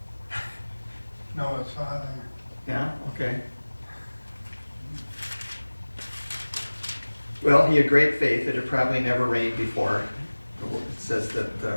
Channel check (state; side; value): inverted; both; correlation -1.00